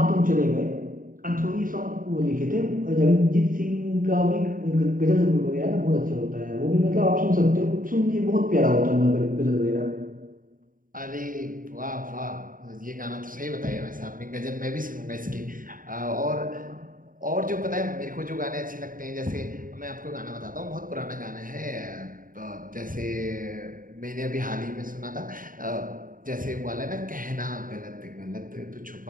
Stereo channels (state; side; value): late; left; 0.40 ms